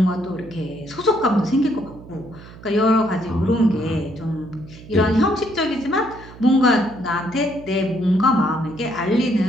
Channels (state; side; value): noise; right; hum, 18 dB below the sound